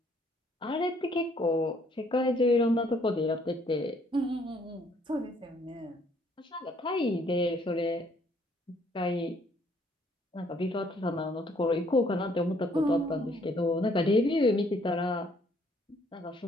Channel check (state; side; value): normal; both; correlation 0.64